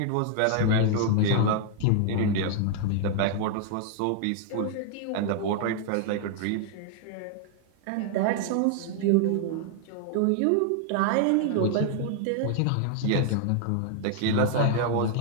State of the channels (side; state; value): both; different; correlation 0.00